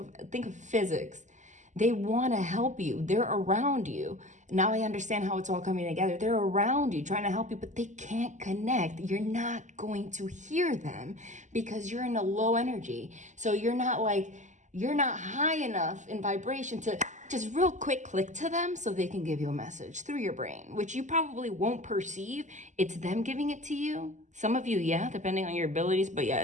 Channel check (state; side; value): late; left; 0.35 ms